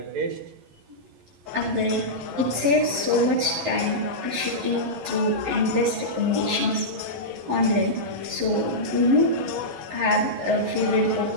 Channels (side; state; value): left; late; 11 ms